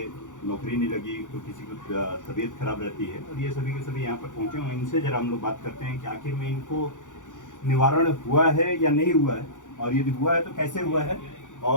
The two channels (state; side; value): late; right; 0.86 ms